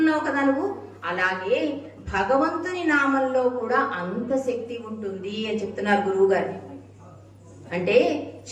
కదా నువ్వు. అలాగే భగవంతుని నామంలో కూడా అంత శక్తి ఉంటుంది అని చెప్తున్నారు గురువు గారు. అంటే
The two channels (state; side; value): identical; both; correlation 1.00